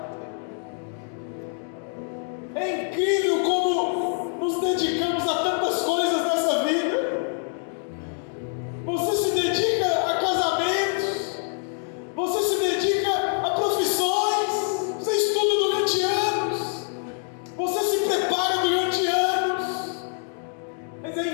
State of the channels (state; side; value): silent; right; 55 dB below the other